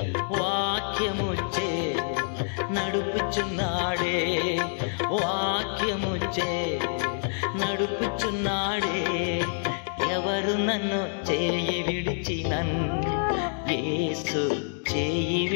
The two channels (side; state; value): right; silent; digital silence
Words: వాక్యముచే నడుపుచున్నాడే, వాక్యముచే నడుపుచున్నాడే. ఎవరు నన్ను చేయి విడిచినన్ యేసు చేయి